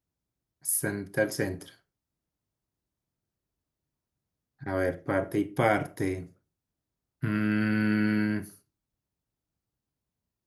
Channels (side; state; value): both; identical; correlation 1.00